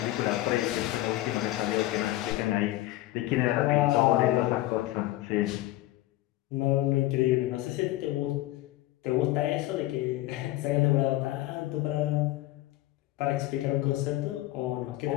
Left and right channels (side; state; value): right; quieter; 16.6 dB